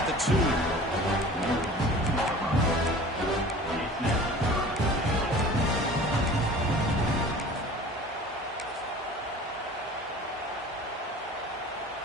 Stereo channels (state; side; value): normal; both; correlation 0.43